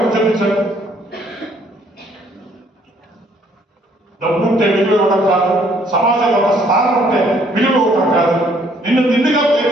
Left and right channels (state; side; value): normal; both; correlation 0.64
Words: చూపించండి. డబ్బు ఉంటే విలువ ఇవ్వడం కాదు, సమాజంలో ఒక స్థానం ఉంటే విలువ ఇవ్వడం కాదు. నిన్ను నిండుగా